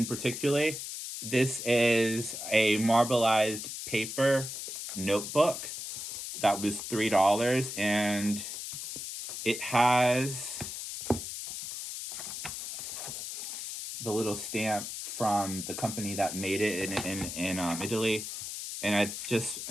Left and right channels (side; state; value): left; noise; hiss, 7 dB below the sound